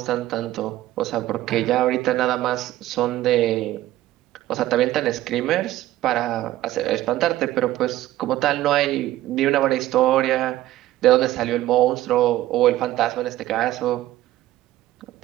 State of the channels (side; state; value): left; quieter; 15.1 dB